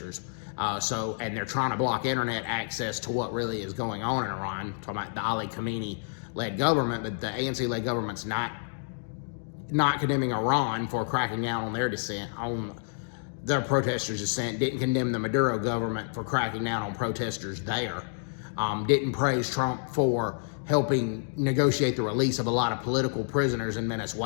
And they're trying to block internet access to what really is going on in Iran. I'm talking about the Ali Khamenei-led government, but the ANC-led government's not condemning Iran for cracking down on their dissent, on their protesters' dissent, didn't condemn the Maduro government for cracking down on protesters there, didn't praise Trump for helping negotiate the release of a lot of political prisoners in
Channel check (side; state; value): right; silent; digital silence